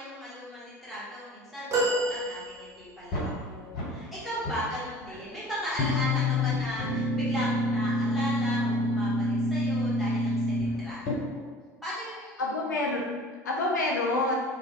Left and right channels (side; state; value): both; normal; correlation 0.44